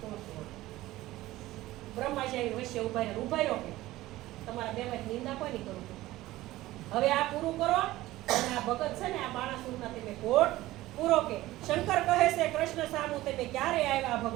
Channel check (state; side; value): quieter; left; 16.9 dB